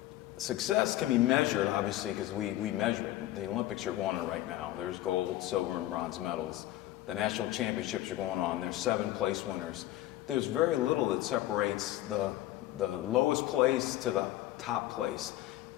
Success can be measured, obviously, because we measure it. The Olympics are going on right now. There's gold, silver, and bronze medals. The national championships are going on. There's 7 place winners. There's very little that separates the lowest place to the top place.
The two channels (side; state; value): right; quieter; 15.1 dB